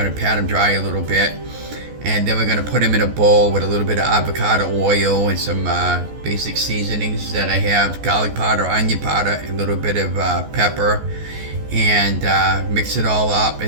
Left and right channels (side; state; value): left; late; 14 ms